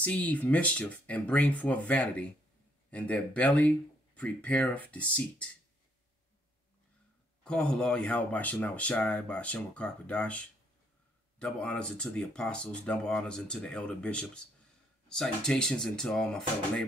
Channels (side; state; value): both; normal; correlation 0.69